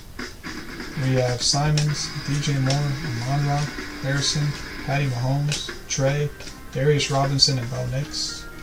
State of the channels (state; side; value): identical; both; correlation 1.00